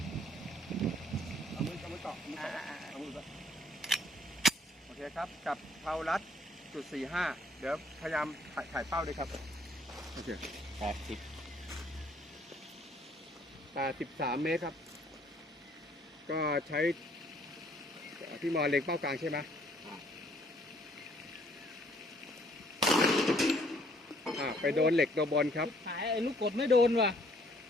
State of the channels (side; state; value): both; normal; correlation 0.63